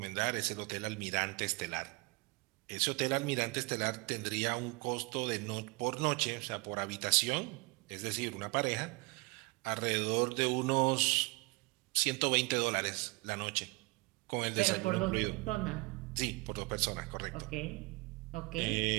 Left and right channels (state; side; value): quieter; left; 26.2 dB